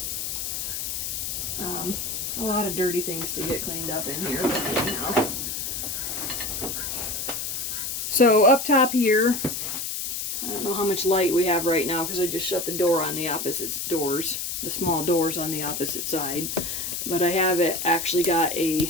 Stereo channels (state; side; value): noise; left; hiss, 3 dB below the sound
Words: A lot of dirty things to get cleaned up in here, but anyhow. So up top here, I don't know how much light we have right now because I just shut the door on the opposite doors, the small doors on the opposite side. But I have it actually got